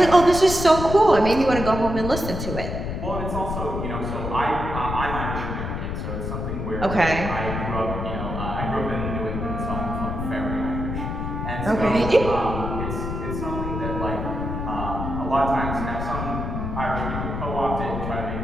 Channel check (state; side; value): noise; left; rumble, 4 dB below the sound